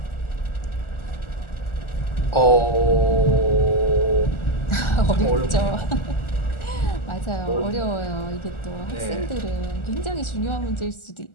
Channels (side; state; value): right; late; 1.4 ms